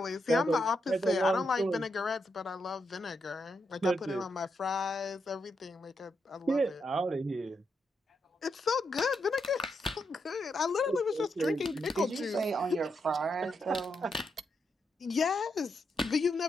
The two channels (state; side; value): normal; both; correlation 0.82